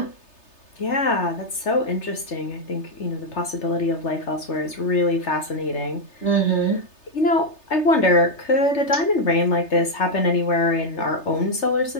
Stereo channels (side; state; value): right; late; 3.3 ms